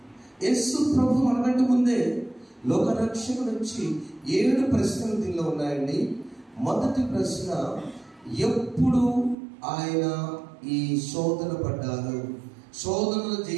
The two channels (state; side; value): drops out; left; at 9.3 s